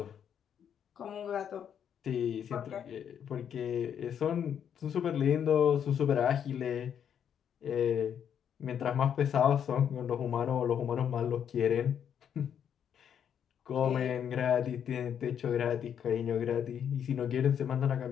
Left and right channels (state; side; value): quieter; right; 8.6 dB